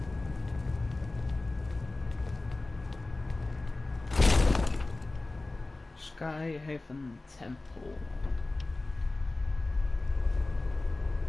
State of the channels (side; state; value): right; quieter; 3.1 dB